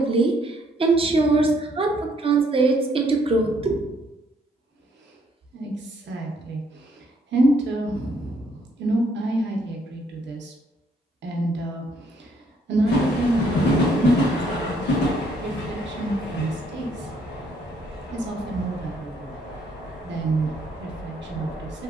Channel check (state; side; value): normal; both; correlation 0.68